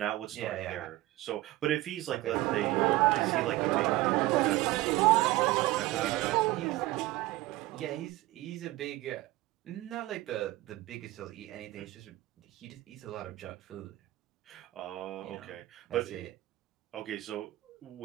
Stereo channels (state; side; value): quieter; left; 17.8 dB